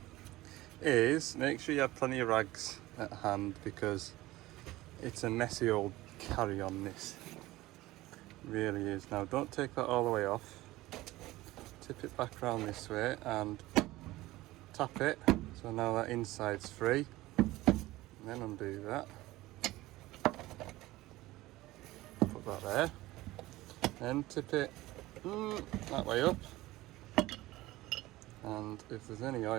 is make sure you have plenty of rags at hand, because it's a messy old carry on, this really is. Now don't take that all the way off, tip it back around this way and tap it, so now that inside's free, and then undo that, put that there, then tip it that way up, and if there's any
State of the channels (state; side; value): quieter; left; 17.9 dB